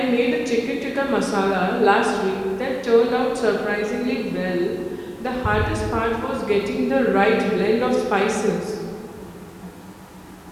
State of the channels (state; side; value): identical; both; correlation 1.00